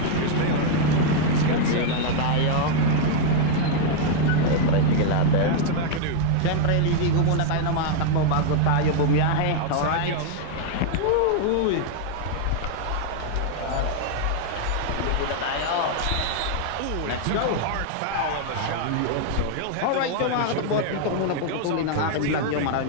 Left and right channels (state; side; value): different; both; correlation 0.00